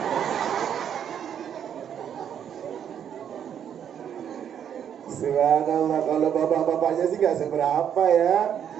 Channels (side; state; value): left; quieter; 8.9 dB